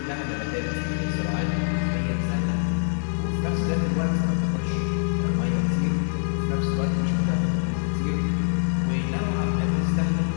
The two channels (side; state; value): right; silent; 62 dB below the other